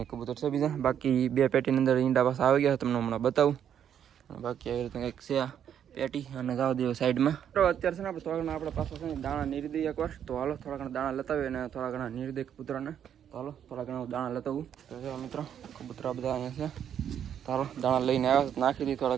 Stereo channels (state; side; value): quieter; left; 9.2 dB